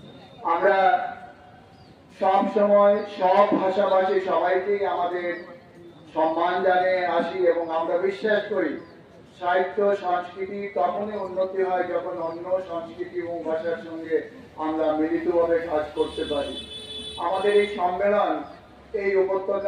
আমরা সব সময় সব ভাষাভাষী সবাইকেই আমাদের সম্মান জানিয়ে আসি এবং আমরা বিশ্বাস করি সাহিত্য সংস্কৃতি তখনই উন্নতি হয় যখন অন্য সংস্কৃতি এবং ভাষার সঙ্গে আমরা মিলিতভাবে কাজ করতে পারি। আমাদের এই সম্মেলন এই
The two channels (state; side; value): identical; both; correlation 1.00